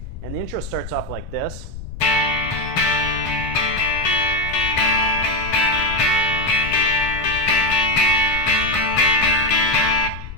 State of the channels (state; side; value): noise; left; rumble, 11 dB below the sound